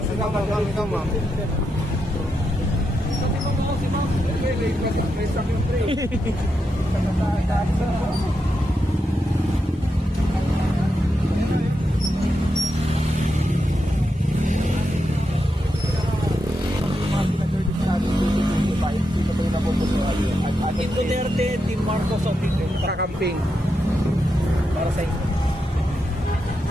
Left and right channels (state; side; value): normal; both; correlation 0.85